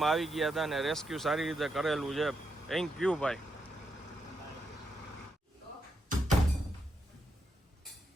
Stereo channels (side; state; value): both; normal; correlation 0.83